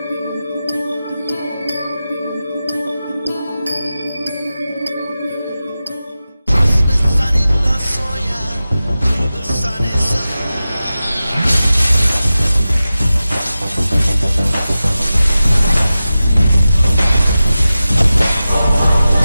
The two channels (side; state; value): both; inverted; correlation -0.94